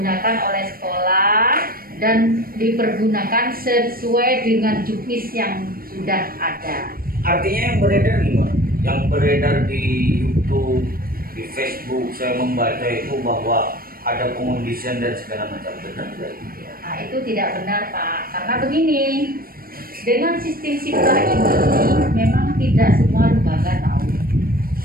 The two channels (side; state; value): left; late; 0.43 ms